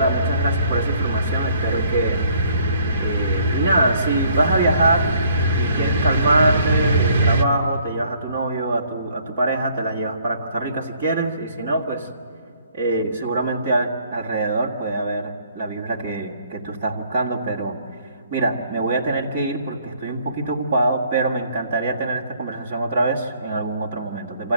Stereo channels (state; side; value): inverted; both; correlation -0.63